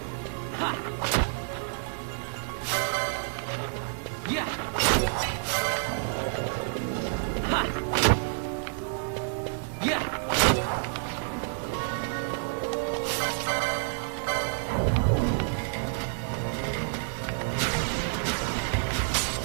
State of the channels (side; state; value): left; silent; digital silence